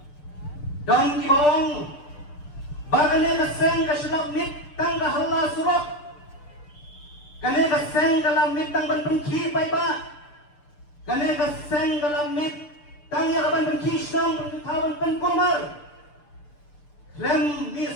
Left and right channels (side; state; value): right; late; 6.8 ms